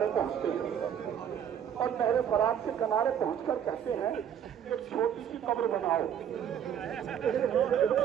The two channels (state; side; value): quieter; left; 9.0 dB